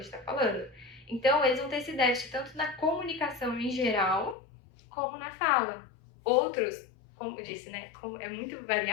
tá falando. Então, eles vão ter esse déficit tanto na comunicação em geral, como na fala. Outros, como eu disse, né, como é muito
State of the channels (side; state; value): right; drops out; at 4.4 s